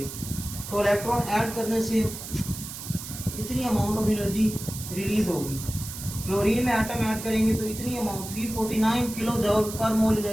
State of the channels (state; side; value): noise; right; hiss, 10 dB below the sound